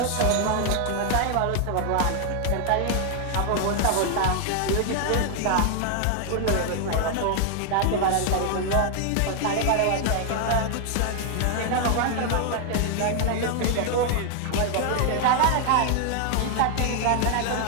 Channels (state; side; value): different; both; correlation 0.00